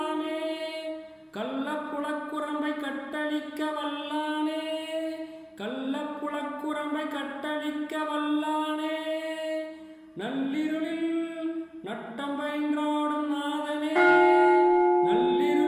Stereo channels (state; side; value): identical; both; correlation 1.00